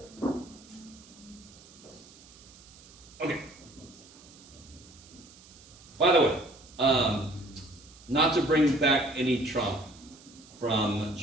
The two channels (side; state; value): right; noise; hiss, 22 dB below the sound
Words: Okay. By the way, not to bring back any trauma from